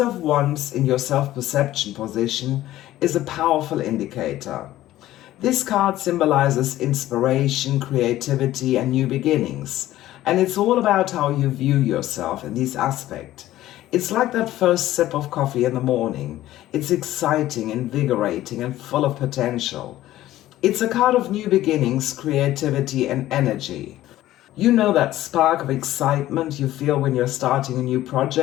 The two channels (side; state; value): right; quieter; 14.6 dB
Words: Wands in your self-perception position is a powerful indicator. This card symbolizes inspiration, creativity, and new beginnings. And it's all about how you view yourself in this aspect. It's like that first sip of coffee in the morning. It's exciting, invigorating, and full of potential. It's a card of new beginnings, creativity, and energy. You know that spark of excitement you feel when you're starting a new